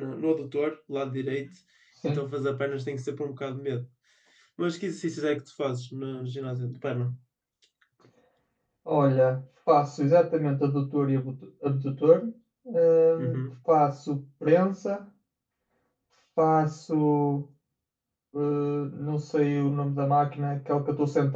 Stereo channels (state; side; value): identical; both; correlation 1.00